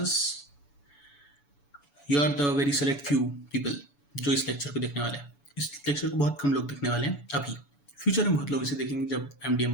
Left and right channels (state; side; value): late; right; 7.0 ms